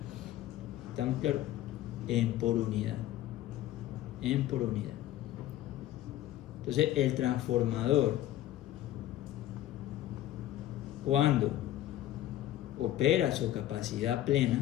¿Estamos claros? En por unidad. En por unidad. Entonces, el transformador, cuando opera su capacidad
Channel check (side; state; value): right; quieter; 13.5 dB